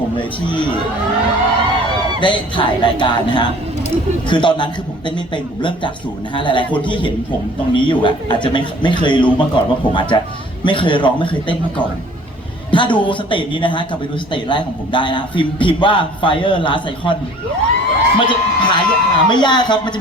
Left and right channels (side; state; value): both; normal; correlation 0.50